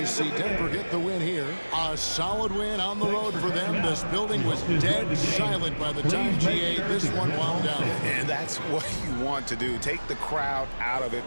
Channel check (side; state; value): both; inverted; correlation -1.00